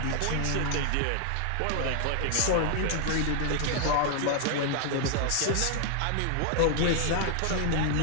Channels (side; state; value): both; different; correlation 0.00